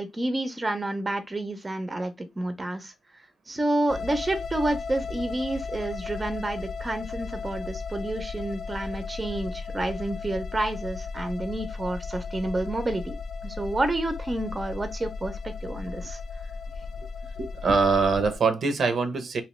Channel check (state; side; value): normal; both; correlation 0.87